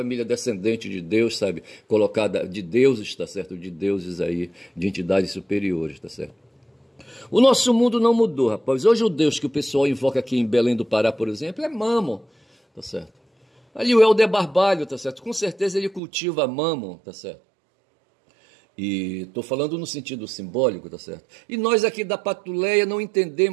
descendente de Deus, sabe? Colocada de deuses, tá certo? De deuses aí, de entidades superiores, tá certo? O nosso mundo não mudou, rapaz. Hoje o Deus que o pessoal invoca aqui em Belém do Pará, por exemplo, é Mammon, tá certo? Ali o Helder Barbalho, tá certo? Com certeza ele cultiva Mammon, tá certo? E estou falando no sentido simbólico, tá certo? E nós aqui da Patuleia não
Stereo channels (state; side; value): drops out; left; at 16.0 s